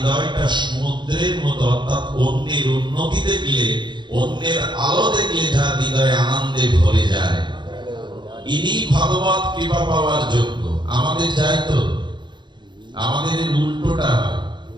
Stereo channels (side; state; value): left; late; 0.22 ms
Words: সমুদ্রের মতো, অর্থাৎ অন্যের উন্নতি দেখলে, অন্যের আলো দেখলে যার হৃদয়ে আনন্দে ভরে যায়, ইনি ভগবত কৃপা পাওয়ার যোগ্য। আমাদের যাই তো, আমাদের উল্টোটা হয়।